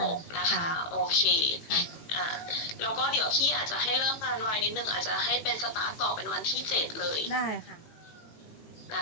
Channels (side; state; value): right; late; 18 ms